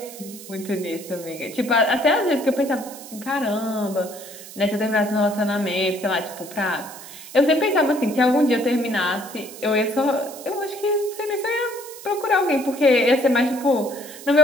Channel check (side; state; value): right; noise; hiss, 15 dB below the sound